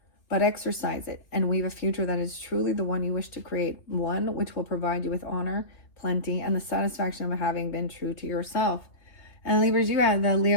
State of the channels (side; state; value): right; late; 3.2 ms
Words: but exercise it and weave a future that is truly the one you wish to create, one which will provide you with honor, plenty, and the satisfaction of having been true to yourself. And Libras, you have the